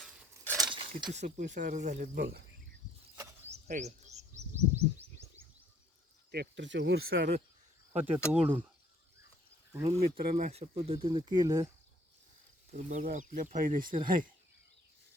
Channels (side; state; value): both; normal; correlation 0.61